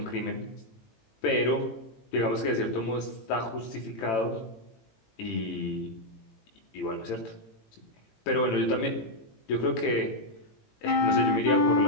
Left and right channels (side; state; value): right; late; 18 ms